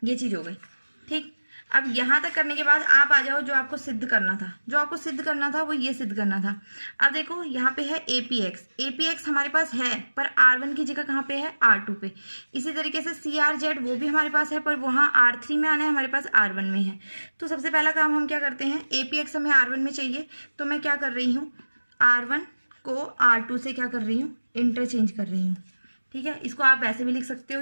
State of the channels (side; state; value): both; inverted; correlation -1.00